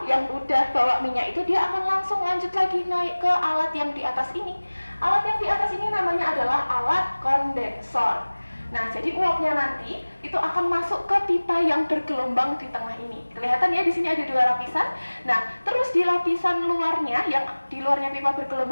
yang udah bawa minyak itu dia akan langsung lanjut lagi naik ke alat yang di atas ini. Alat yang di atas ini namanya adalah alat kondensor. Nah, jadi uapnya nanti itu akan masuk ke pipa yang bergelombang di tengah ini. Kelihatan ya di sini ada 2 lapisan. Nah, terus di lapisan luarnya, yang di luarnya pipa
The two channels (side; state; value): both; inverted; correlation -1.00